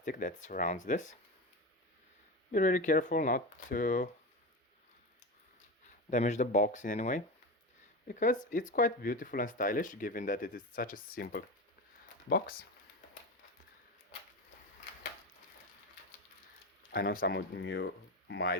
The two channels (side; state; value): both; normal; correlation 0.22